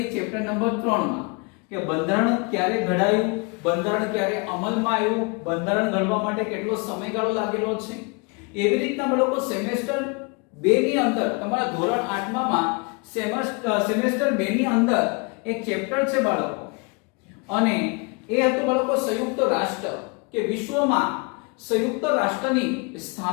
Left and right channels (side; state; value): right; quieter; 31.4 dB